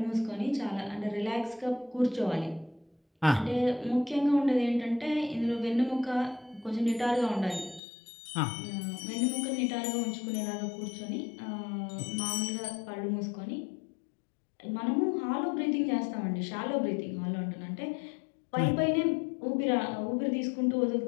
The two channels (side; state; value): right; drops out; at 7.8 s